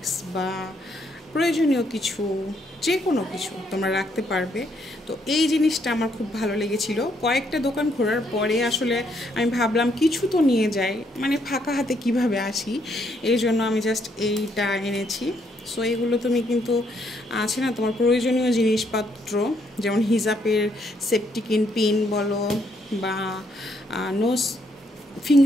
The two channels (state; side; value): normal; both; correlation 0.72